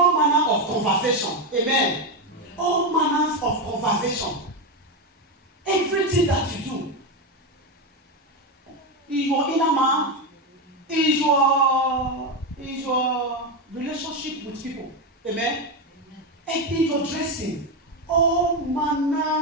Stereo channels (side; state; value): both; normal; correlation 0.10